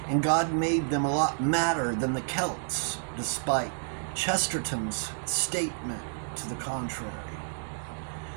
and God made them a lot madder than the Celts, despite Chesterton's statement to the contrary.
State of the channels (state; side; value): silent; left; digital silence